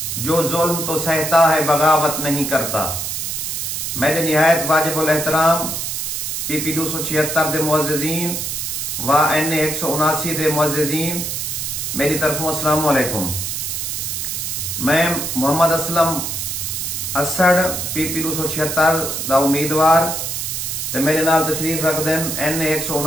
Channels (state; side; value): noise; right; hiss, 3 dB below the sound